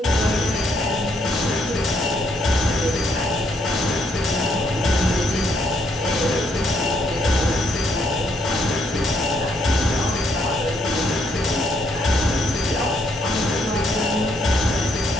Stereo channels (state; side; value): normal; both; correlation 0.72